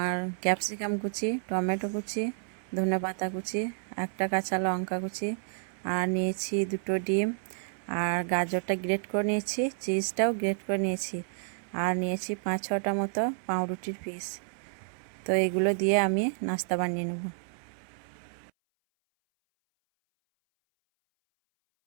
ক্যাপসিকাম কুচি, টমেটো কুচি, ধনেপাতা কুচি, একটা কাঁচা লঙ্কা কুচি, আর নিয়েছি দুটো ডিম, আর গাজরটা গ্রেট করে নিয়েছি, চিজটাও গ্রেট করে নিয়েছি, আর নিয়েছি 5-6টা মতো পাউরুটির পিস। তো এগুলো দিয়ে আমি নাস্তা বানিয়ে নেব।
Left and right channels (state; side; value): silent; left; 58 dB below the other